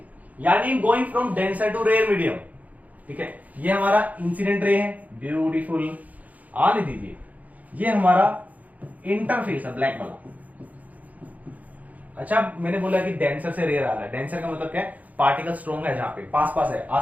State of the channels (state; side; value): late; left; 0.076 ms